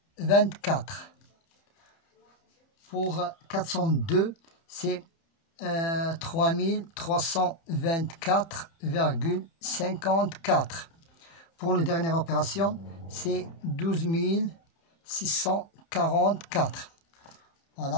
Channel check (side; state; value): right; late; 30 ms